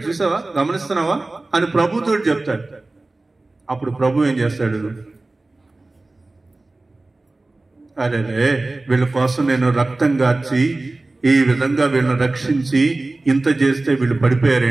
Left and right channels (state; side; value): quieter; left; 3.1 dB